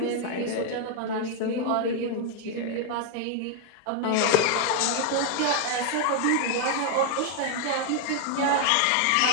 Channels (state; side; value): different; both; correlation 0.01